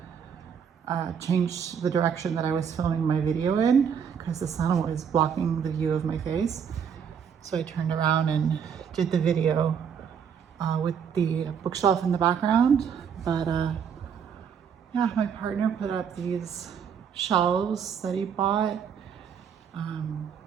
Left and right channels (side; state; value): left; quieter; 7.4 dB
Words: change the direction that I was filming my video in because the sun was blocking the view of my face. So I turned around and did the video with the bookshelf in the background. But yeah, my partner put up these shelves that he bought.